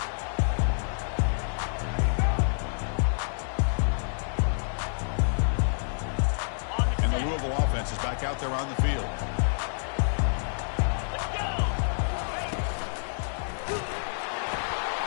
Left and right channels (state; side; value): silent; right; digital silence